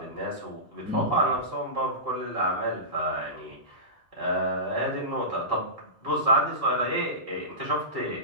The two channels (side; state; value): both; normal; correlation -0.20